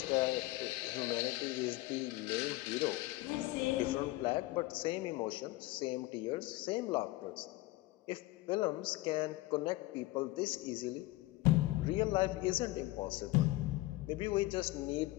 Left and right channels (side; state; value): right; quieter; 19.3 dB